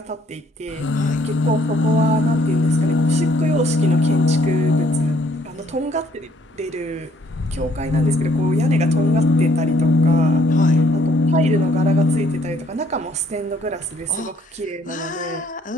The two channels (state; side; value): normal; both; correlation 0.65